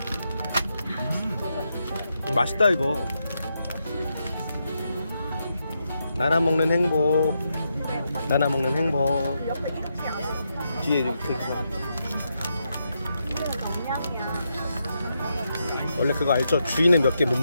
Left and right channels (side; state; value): both; inverted; correlation -0.82